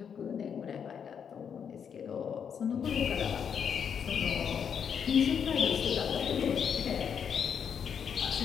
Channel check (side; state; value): right; quieter; 7.5 dB